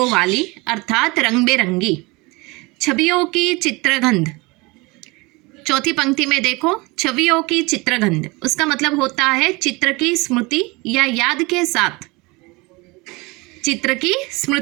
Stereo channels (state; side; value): quieter; left; 25.0 dB